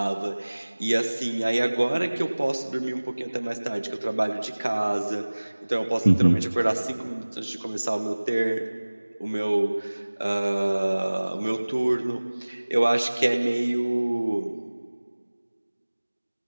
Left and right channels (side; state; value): both; inverted; correlation -1.00